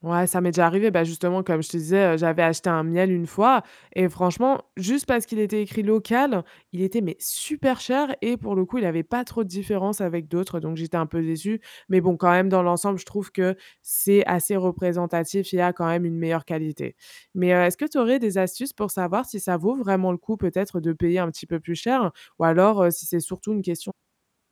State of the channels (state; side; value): identical; both; correlation 1.00